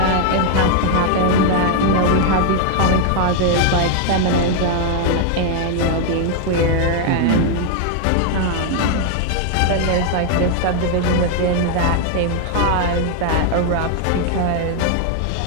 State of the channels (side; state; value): both; different; correlation 0.00